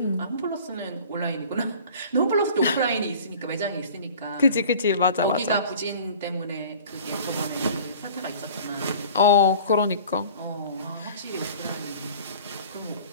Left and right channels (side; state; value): both; inverted; correlation -0.45